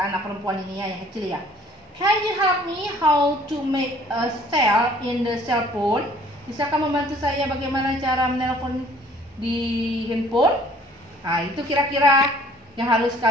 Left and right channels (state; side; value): normal; both; correlation 0.55